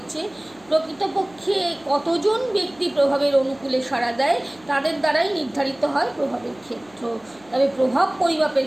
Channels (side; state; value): right; noise; hum, 28 dB below the sound